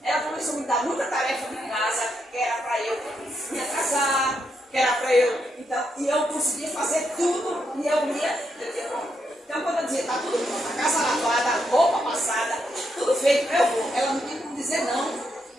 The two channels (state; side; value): normal; both; correlation 0.80